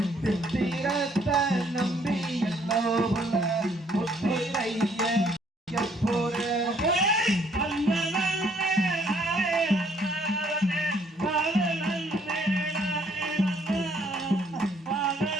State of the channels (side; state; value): both; normal; correlation 0.65